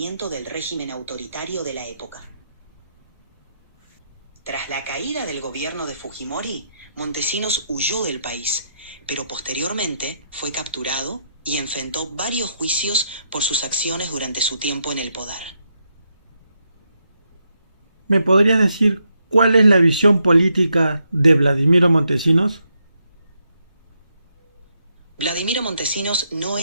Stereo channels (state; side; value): inverted; both; correlation -0.79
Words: del régimen autoritario de la época. Tras la caída del gobierno de Fujimori, Montesinos huyó del país, pero posteriormente fue capturado y enfrentó varios juicios por sus acciones durante su tiempo en el poder. ¿Me podrías decir cuál es la visión política de Vladimiro Montesinos? Vladimiro Montesinos no